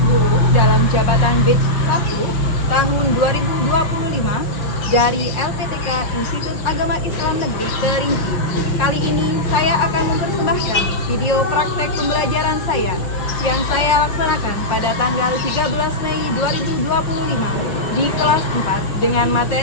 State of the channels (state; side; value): late; right; 5.9 ms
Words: guru dalam jabatan Batch 1 tahun 2025 dari LPTK Institut Agama Islam Negeri Kerinci. Kali ini saya akan mempersembahkan video praktek pembelajaran saya yang saya laksanakan pada tanggal 13 Mei 2025 di kelas 4 dengan